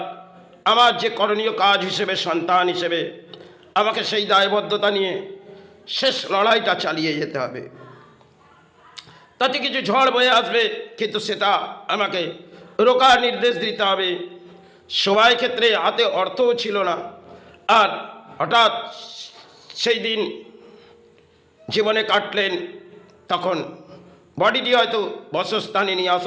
আমার যে করণীয় কাজ হিসেবে, সন্তান হিসেবে আমাকে সেই দায়বদ্ধতা নিয়ে শেষ লড়াইটা চালিয়ে যেতে হবে। তাতে কিছু ঝড় বয়ে আসবে, কিন্তু সেটা আমাকে রোকার নির্দেশ দিতে হবে। সবাই ক্ষেত্রে হাতে অর্থও ছিল না। আর হঠাৎ সেই দিন জীবনে কাটলেন, তখন বডিটি হয়তো বসস্থানে নিয়ে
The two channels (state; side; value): identical; both; correlation 1.00